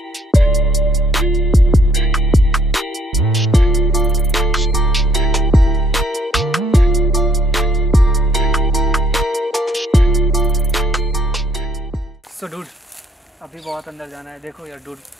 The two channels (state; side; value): normal; both; correlation 0.66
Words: सो डूड अभी बहुत अंदर जाना है। देखो यार डूड,